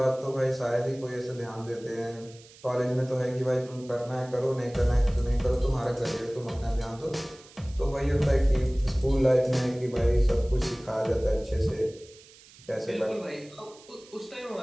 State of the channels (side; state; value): right; noise; hiss, 23 dB below the sound